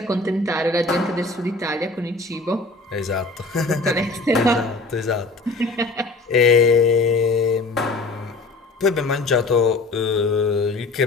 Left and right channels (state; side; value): quieter; right; 3.4 dB